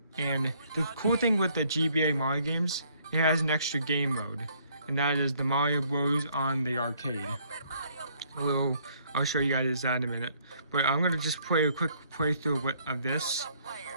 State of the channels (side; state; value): both; inverted; correlation -0.65